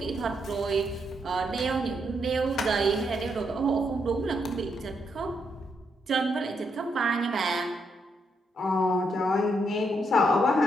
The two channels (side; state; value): both; normal; correlation 0.78